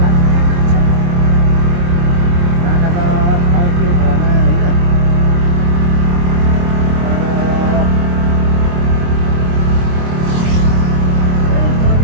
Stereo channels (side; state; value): left; late; 23 ms